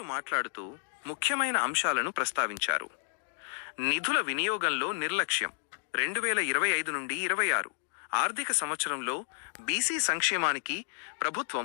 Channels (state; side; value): silent; right; 57 dB below the other